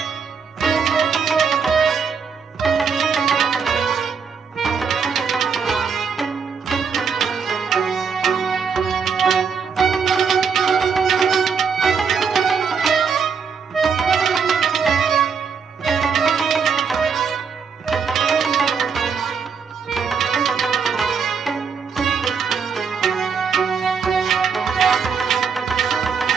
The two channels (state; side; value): quieter; left; 6.1 dB